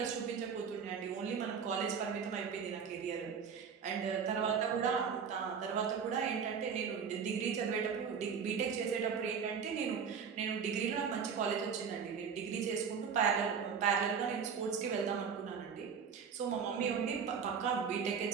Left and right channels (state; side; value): quieter; left; 6.5 dB